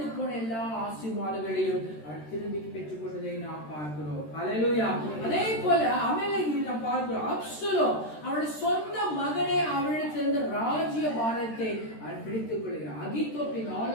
போன எல்லா ஆசீர்வாதங்களையும் அவன் திரும்பி பெற்றுக் கொண்டதை நாம் பார்க்கிறோம். ஹல்லேலூயா. அதே போல அமலேக்கில் நாம் பார்க்கிறோம், அப்சலோம் அவனுடைய சொந்த மகனே அவனிடத்திலிருந்து ராஜ்ய பாரத்தை அவன் பிடித்துக் கொள்கிறான். அகித்தோப்பின்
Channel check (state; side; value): late; right; 13 ms